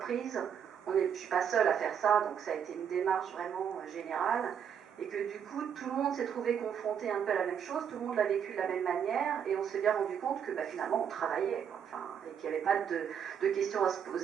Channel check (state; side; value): quieter; left; 8.1 dB